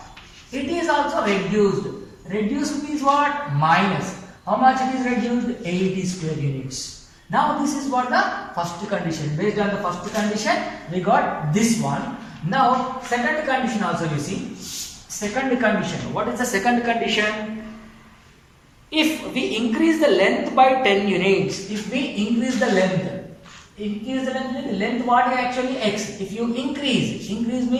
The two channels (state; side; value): identical; both; correlation 1.00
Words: It is also reduced. Reduced means what? Minus. How much it is reduced? 80 square units. Now this is what the first condition. Based on the first condition, we got this one. Now second condition also you see. Second condition. What is the second condition? If we increase the length by 10 units, if we increase the length what is actually x. If you increase